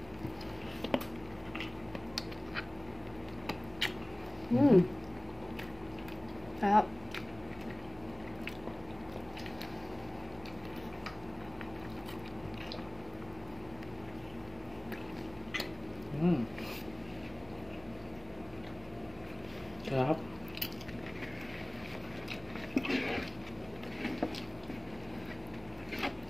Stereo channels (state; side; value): noise; left; rumble, 27 dB below the sound